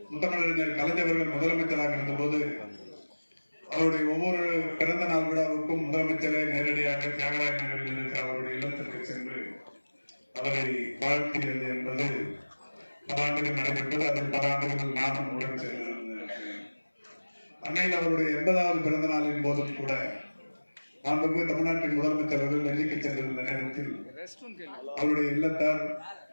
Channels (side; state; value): both; inverted; correlation -1.00